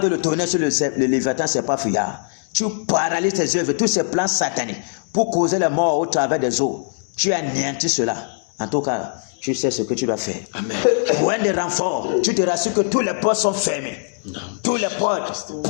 le tonnerre sur le Léviathan, c'est pas fuyard, tu paralyses tes œuvres, tous ces plans sataniques, pour causer les morts au travers des eaux, tu anéantis cela. En tout cas, tu sais ce que tu dois faire. Amen. Point de renfort, tu te rassures que tous les ports sont fermés. Tous les ports,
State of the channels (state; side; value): silent; right; digital silence